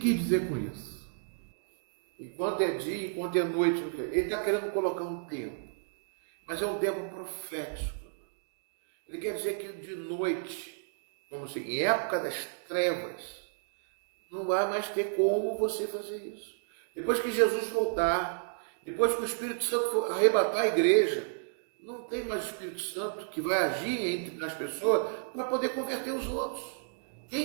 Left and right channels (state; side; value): silent; left; digital silence